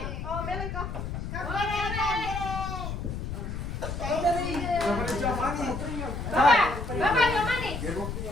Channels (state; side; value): noise; left; rumble, 5 dB below the sound